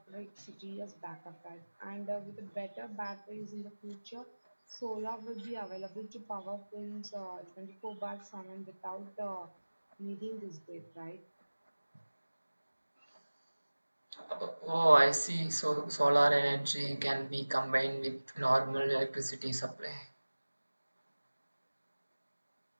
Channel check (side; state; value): both; inverted; correlation -1.00